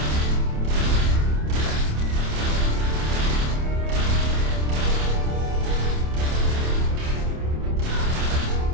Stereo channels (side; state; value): left; late; 27 ms